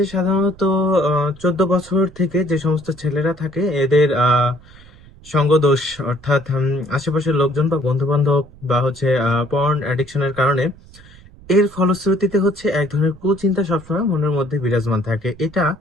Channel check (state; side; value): noise; right; rumble, 22 dB below the sound